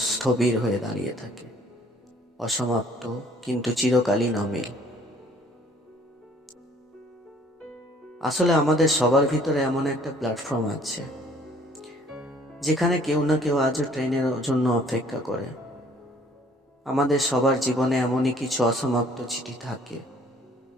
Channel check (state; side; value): normal; both; correlation 0.58